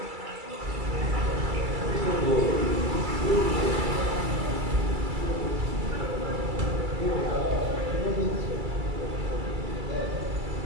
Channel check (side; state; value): left; late; 2.3 ms